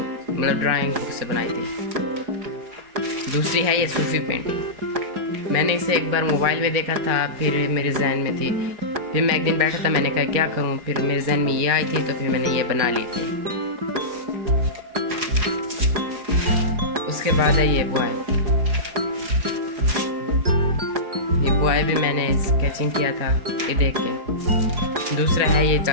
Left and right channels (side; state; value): left; late; 4.8 ms